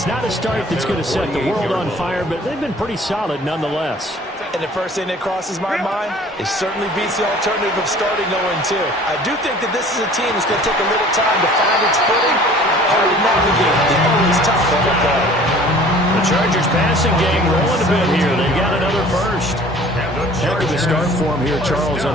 not a start that's going to set the world on fire, but they've been pretty solid nonetheless. And the first thing that crosses my mind, it certainly beats the alternative of starting 0-2. I do think that this is a team that's going to take a little time to find its footing, hard to navigate. They're always tough on the ball. The Chargers passing game rolling a bit here. They got another first. Heck of a start for him here, Charles,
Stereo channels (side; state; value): both; normal; correlation 0.49